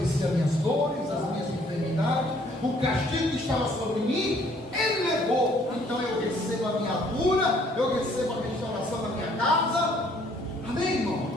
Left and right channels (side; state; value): both; normal; correlation 0.62